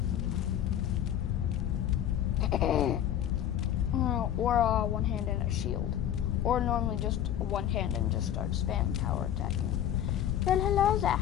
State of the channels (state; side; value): quieter; right; 10.7 dB